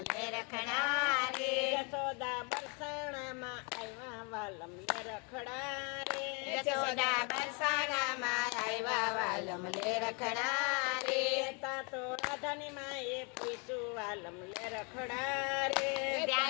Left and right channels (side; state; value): right; quieter; 33.8 dB